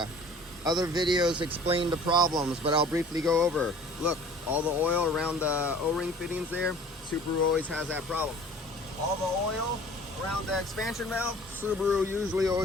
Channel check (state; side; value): normal; both; correlation 0.48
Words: Other videos explain the problems, but I'll briefly go over. Look, all the oil around the O-ring fittings there, Subaru always has that problem. All the oil around the expansion valve, Subaru usually